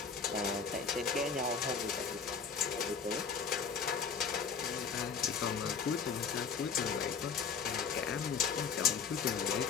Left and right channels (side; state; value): right; quieter; 5.9 dB